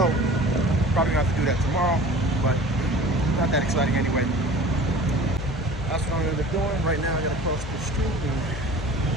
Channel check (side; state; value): both; normal; correlation 0.42